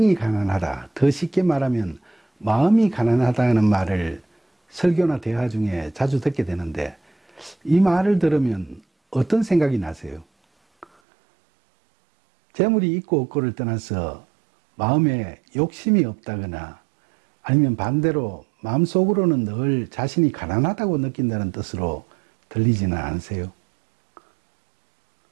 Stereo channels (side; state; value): left; drops out; at 10.9 s